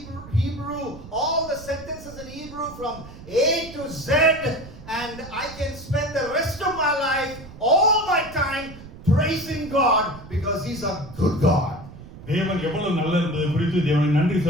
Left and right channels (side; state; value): right; noise; rumble, 16 dB below the sound